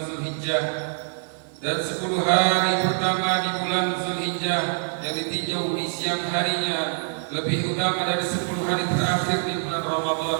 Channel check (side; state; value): left; silent; 59 dB below the other